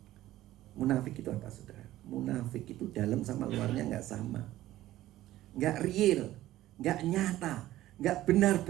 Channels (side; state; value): left; quieter; 14.9 dB